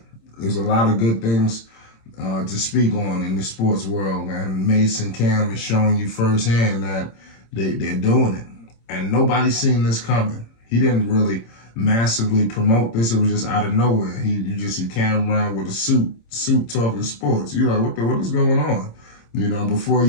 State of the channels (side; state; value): right; late; 26 ms